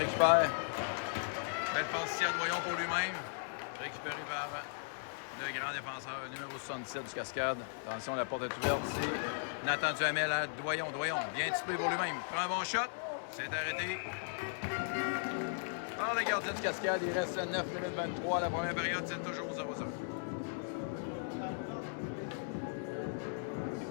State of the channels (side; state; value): right; silent; digital silence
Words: Belle passe ici à Doyon pour lui-même. Récupéré par le grand défenseur numéro 77 du Cascade. Attention, la porte est ouverte ici. Nathan Duhamel à Doyon. Doyon, bien typé pour lui-même. Prend un bon shot. C'est arrêté par le gardien du Cascade. Il reste 9 minutes 23. La première période, c'est toujours 0-0.